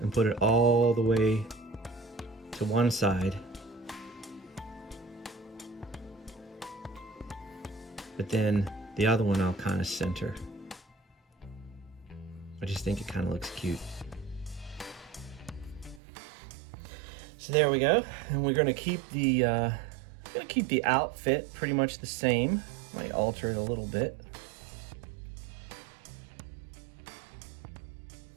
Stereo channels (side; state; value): left; drops out; at 16.0 s